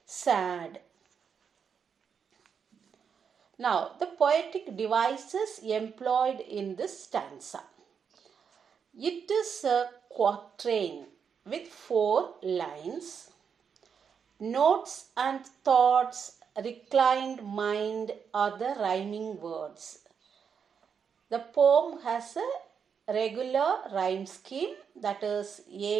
sad. Now, the poetic devices employed in this stanza. It is a quatrain with 4 lines. Notes and thoughts, reclined mind are the rhyming words. The poem has a regular rhyme scheme, that is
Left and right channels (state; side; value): quieter; left; 6.8 dB